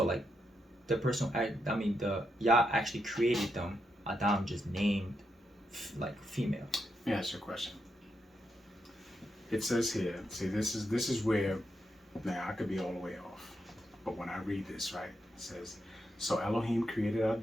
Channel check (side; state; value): both; normal; correlation 0.82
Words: like the person, the Yah actually created them. Adam just named like female. Let me ask you a question. It says here, see, this is where, now I could be all the way off, but when I read this, right, it says, so Elohim created